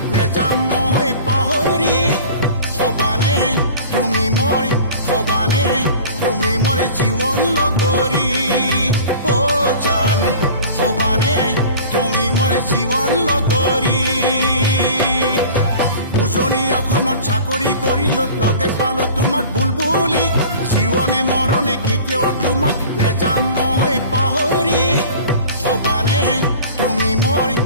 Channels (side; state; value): both; inverted; correlation -0.41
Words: নেযাম মই পাহৰি হবানে তুমি মোৰ জীৱন লগৰী ও জান হবানে তুমি মোৰ জীৱন লগৰী উজনি অসমত চাকৰি কৰিলো লগে পালো তোমাক বুলবুলি জীৱনে মৰণে কেতিয়াও তোমাক নেযাম মই পাহৰি হবানে তুমি